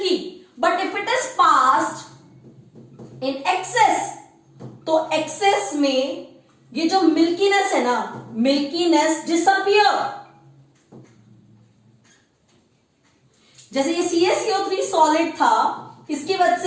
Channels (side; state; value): both; identical; correlation 1.00